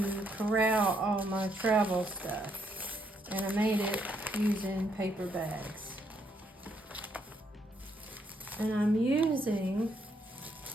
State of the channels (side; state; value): both; normal; correlation 0.74